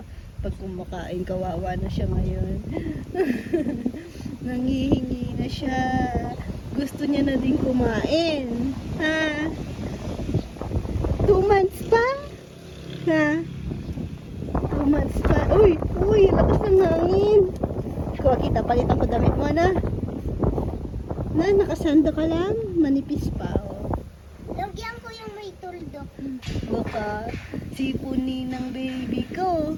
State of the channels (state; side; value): identical; both; correlation 1.00